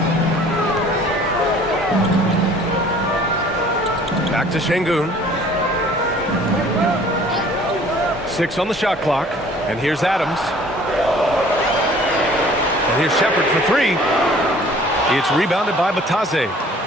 Back to Şengün. 6 on the shot clock. And here's Adams. And here's Shepherd for 3. It's rebounded by Batase.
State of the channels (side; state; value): both; normal; correlation 0.52